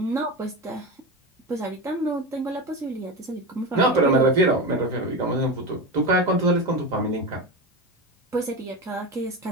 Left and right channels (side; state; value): both; normal; correlation 0.21